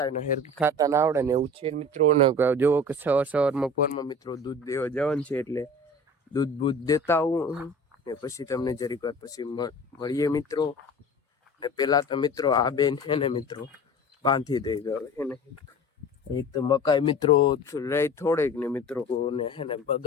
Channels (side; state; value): both; normal; correlation 0.39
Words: હેરકી ખાતા ના આવડે ને એવું છે મિત્રો. ને જોવો કે સવારમાં પોરમાં મિત્રો દૂધ દેવા જવાનું છે, એટલે દૂધ બૂધ દેતા આવું ને પછી તમને જરીક વાર પછી મળીએ મિત્રો. ને પેલા તો મિત્રો આ બેન હે ને મિત્રો બાંધી દઈ ગયો હે ને. એક તો મકાઈ મિત્રો રહી થોડીક ને મિત્રો ને હે ને